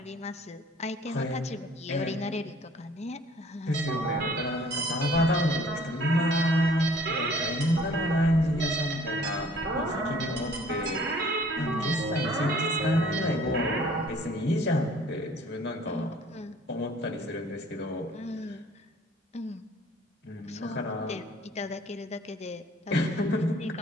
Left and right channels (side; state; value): both; normal; correlation 0.55